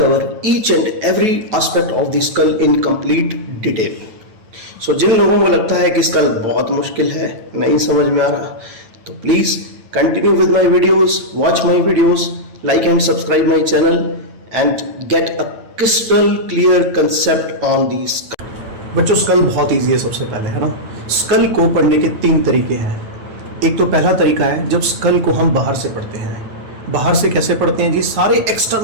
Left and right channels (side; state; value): left; late; 9.0 ms